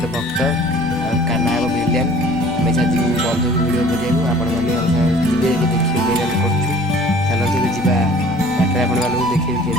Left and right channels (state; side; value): normal; both; correlation 0.50